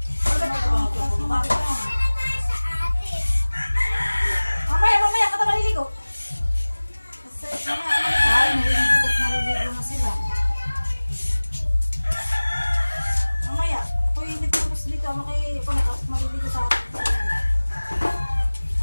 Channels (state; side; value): inverted; both; correlation -1.00